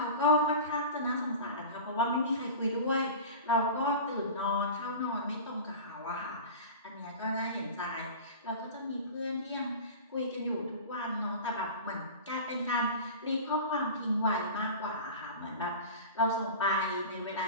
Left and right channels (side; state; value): both; inverted; correlation -0.33